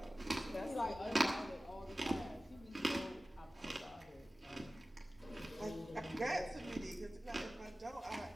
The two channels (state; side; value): normal; both; correlation 0.96